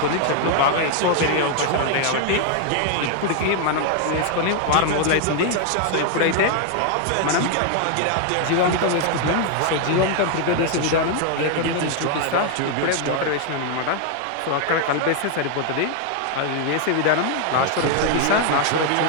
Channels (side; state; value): both; different; correlation 0.00